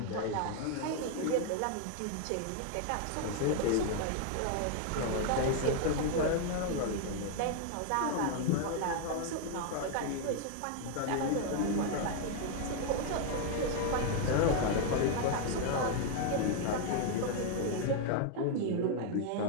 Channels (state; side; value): different; both; correlation 0.00